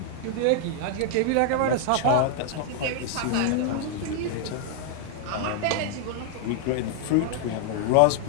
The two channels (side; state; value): both; different; correlation 0.00